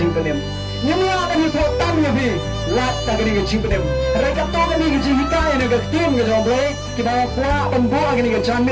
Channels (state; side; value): identical; both; correlation 1.00